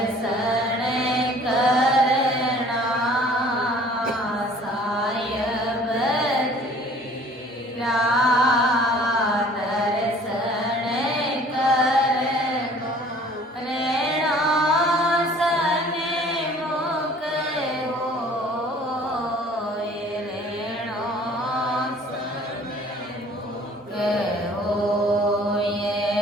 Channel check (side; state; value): both; normal; correlation 0.52